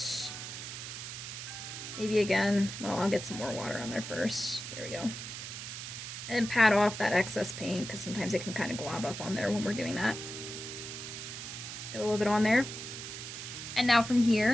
Maybe again, well, I'll get some more water on there first. There we go. And then pat off that excess paint because sometimes it can kind of glob up on there when we're doing that. Let's get a little bit on there. And now from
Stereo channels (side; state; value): right; noise; hiss, 8 dB below the sound